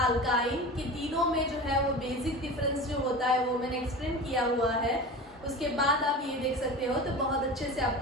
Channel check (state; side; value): normal; both; correlation 0.31